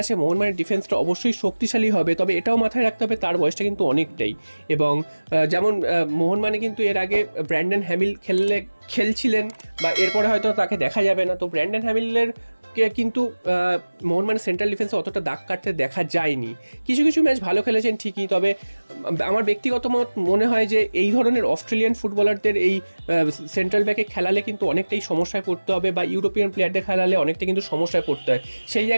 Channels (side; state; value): both; inverted; correlation -1.00